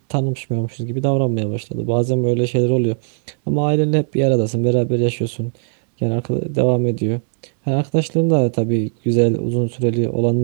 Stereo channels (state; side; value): silent; left; digital silence